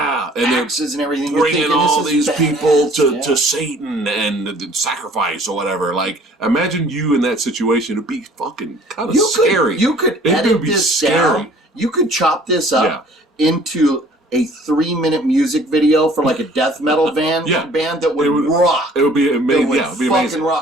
and everything. Bringing all these people to Satan and sacrifice or whatever. Like, imagine you in that situation. It'd be fucking kind of scary. You could edit this down. You could chop this up into a 3-minute music video for like a death metal band that would rock. It would be amazing. It would be amazing.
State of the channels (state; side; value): normal; both; correlation 0.53